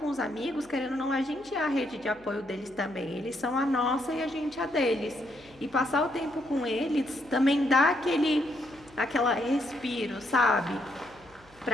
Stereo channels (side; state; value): left; noise; hum, 27 dB below the sound